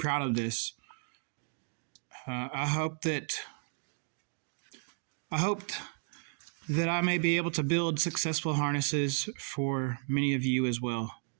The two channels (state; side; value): silent; left; 55 dB below the other